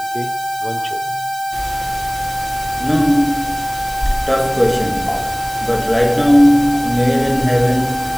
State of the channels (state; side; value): noise; right; hiss, 16 dB below the sound